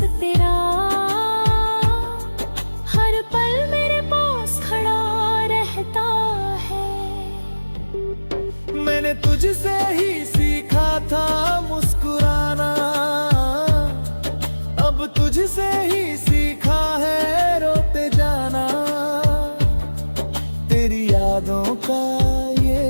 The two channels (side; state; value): both; inverted; correlation -1.00